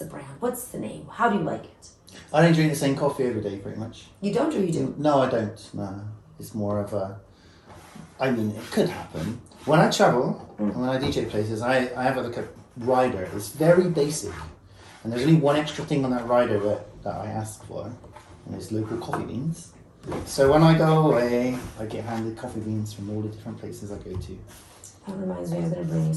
brand? What's the name? How do you like it? I don't drink the same coffee every day, pretty much. You don't or you do? No, I don't. No. It's more of a... I mean, it could happen. When I travel, and when I DJ places, I have like a rider. It's very basic. And there's only one extra thing on that rider that I ask for, and it's local coffee beans. So when I go away, I get handed coffee beans from all the different places I go to. That reminds me, I'm going to bring you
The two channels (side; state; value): both; identical; correlation 1.00